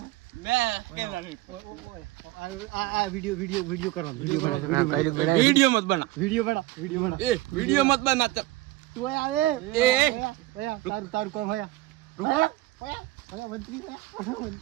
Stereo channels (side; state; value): left; quieter; 17.5 dB